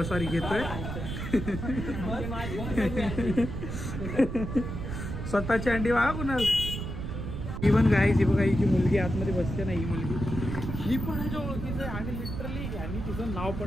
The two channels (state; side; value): noise; right; rumble, 5 dB below the sound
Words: सॉरी घेतोय स्वतःची अंडी बघा कुणाल। इव्हन गाईज ही बघा, हिची मुलगी आतमध्ये बसते ना, ही मुलगी ही पण ह्याच्या ओळखीचं आहे आणि लिटरली यांनी तिचं नाव